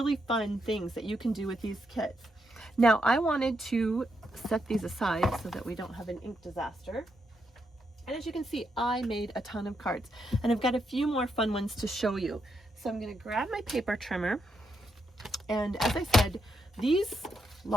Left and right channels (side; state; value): both; normal; correlation 0.81